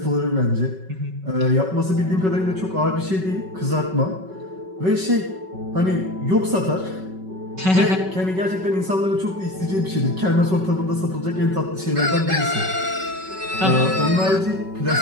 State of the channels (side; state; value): left; late; 5.3 ms